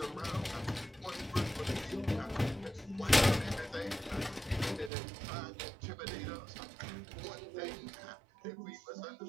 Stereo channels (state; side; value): drops out; left; at 4.9 s